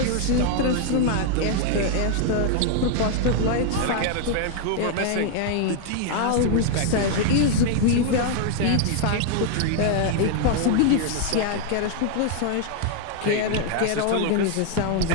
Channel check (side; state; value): both; different; correlation 0.00